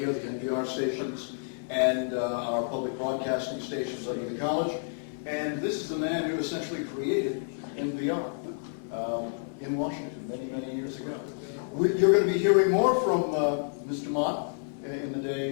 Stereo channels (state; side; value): silent; right; 58 dB below the other